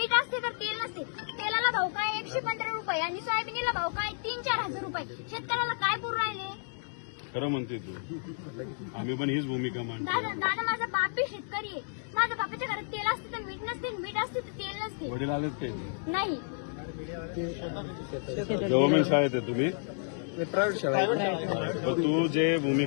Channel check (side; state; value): right; silent; digital silence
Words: असते तर तेल नसते. तेलाला भाव काय 115 रुपये आणि सोयाबीनला भाव काय 3-4 हजार रुपये. शेतकऱ्याला काय पुरू राहिले? खरं म्हणते तू, आम्ही पण हीच भूमिका मांडतो. दादा माझा बाप बी शेतकरी आहे. माझ्या बापाच्या घरात तेल असते तर मीठ नसते, मीठ असते तर तेल नसते. वडील आलेत ते नाही, गव्हर्नमेंट शाळेत आहे तुम्ही. प्रायव्हेट शाळा आहे. तर तू जे